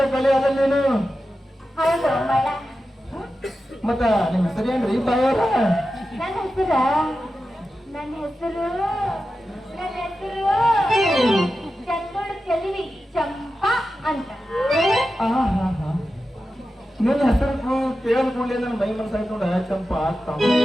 ಕಲಿ ಅದ ನೀನು ಹೌದು ಬಾಣ. ಮತ್ತ ನಿಮ್ ಹೆಸರು ಏನ್ರಿ ಬಾಯವ್ರ ನನ್ನ ಹೆಸರು ನನ್ನ ಹೆಸರು ಚಂದೋಳು ಚೆಲುವಿ ಚಂಪಾ ಅಂತ. ನಿನ್ನ ಹೆಸರು ಕೇಳ್ಕೊಂಡೆ ನನ್ನ ಮೈ ಮನಸ್ಸಾಯ್ತು ನೋಡ ಚಂಪ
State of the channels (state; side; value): normal; both; correlation 0.92